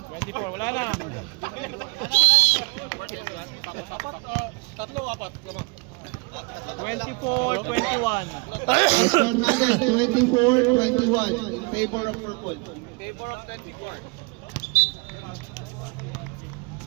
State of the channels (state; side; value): quieter; left; 30.1 dB